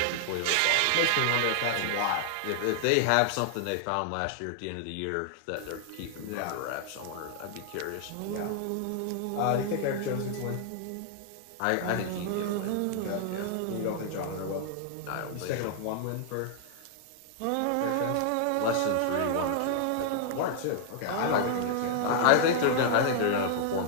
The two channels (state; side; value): different; both; correlation 0.00